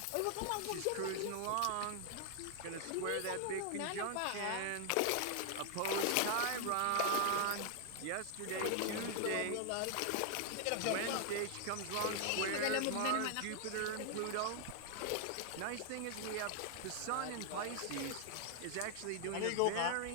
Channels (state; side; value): different; both; correlation 0.00